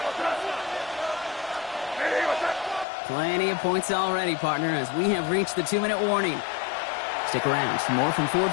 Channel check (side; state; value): right; drops out; at 2.9 s